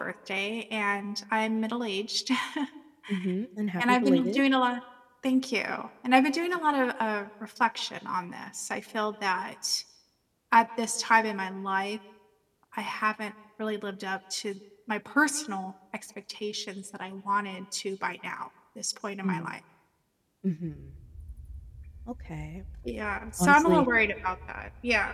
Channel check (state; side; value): identical; both; correlation 1.00